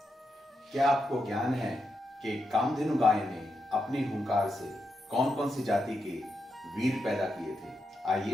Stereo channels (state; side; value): normal; both; correlation 0.85